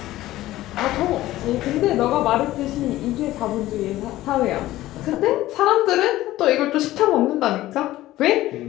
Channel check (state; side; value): quieter; right; 15.7 dB